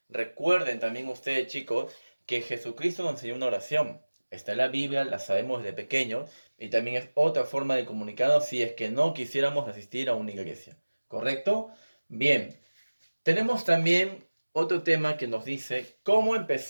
Recuerden también ustedes, chicos, que Jesucristo nos enseñó una oración. Está en la Biblia, la sabemos desde pequeños, y también es otra forma de comunicarnos si es que no quisiéramos asistir a una iglesia. ¿Correcto? Bien, tenemos también otro tema que nos dice cómo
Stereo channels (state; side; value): inverted; both; correlation -1.00